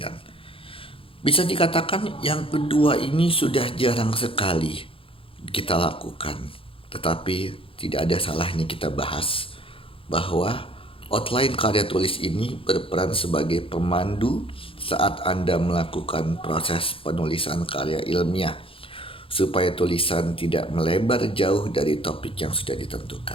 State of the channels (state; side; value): late; right; 0.26 ms